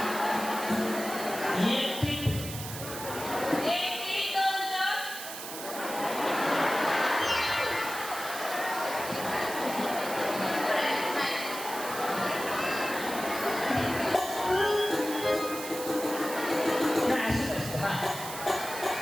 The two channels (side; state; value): right; noise; hiss, 9 dB below the sound